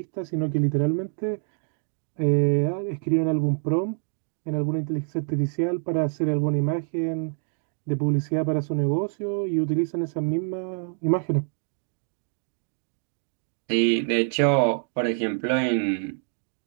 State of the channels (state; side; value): silent; left; 61 dB below the other